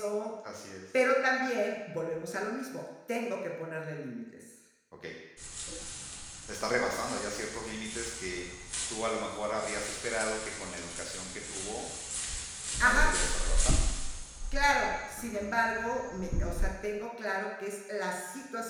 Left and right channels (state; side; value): identical; both; correlation 1.00